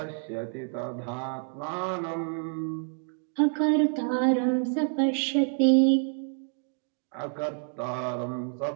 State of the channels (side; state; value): left; silent; 59 dB below the other